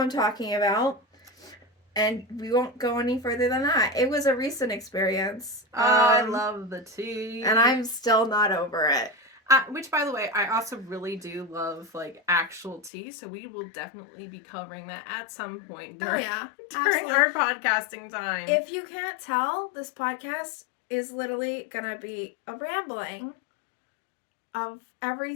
talking about. And we won't go any further than that. It was a recent experience. I love the tea. And I'm still not over it. Which, by the way, I also really do love, like, actual tea. So we will definitely be covering that at some point during our podcasting time. If you can't tell, this podcast is literally going to be a rambling of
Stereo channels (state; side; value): drops out; right; at 12.9 s